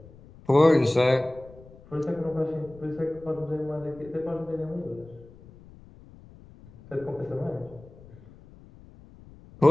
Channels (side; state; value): left; noise; rumble, 22 dB below the sound